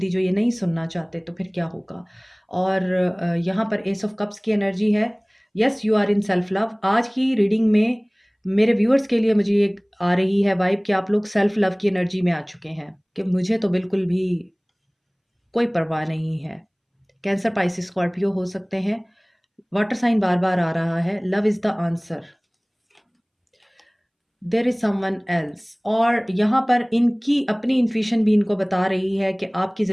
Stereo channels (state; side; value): identical; both; correlation 1.00